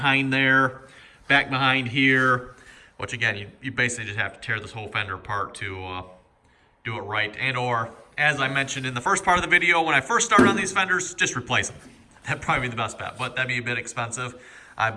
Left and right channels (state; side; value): identical; both; correlation 1.00